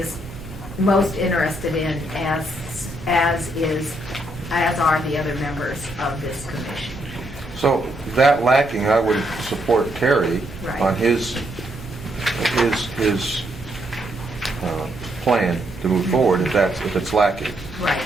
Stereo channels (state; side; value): noise; right; hum, 17 dB below the sound